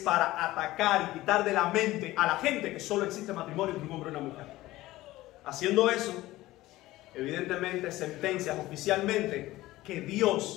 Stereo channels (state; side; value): quieter; right; 17.2 dB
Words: atacar y quitar de la mente a la gente que solo existe matrimonio entre un hombre y una mujer. Haciendo eso, evidentemente sentencias oficialmente que